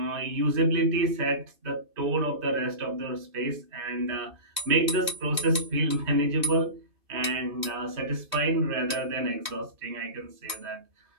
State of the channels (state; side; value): late; left; 2.6 ms